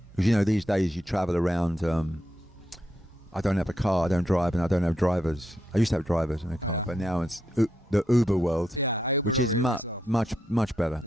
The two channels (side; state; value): both; normal; correlation 0.82